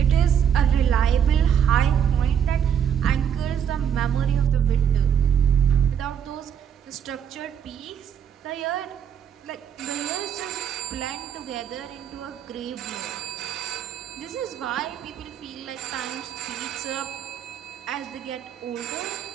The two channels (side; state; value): left; quieter; 8.5 dB